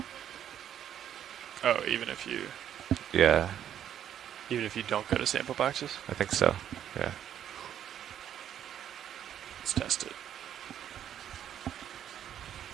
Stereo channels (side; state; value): left; quieter; 10.0 dB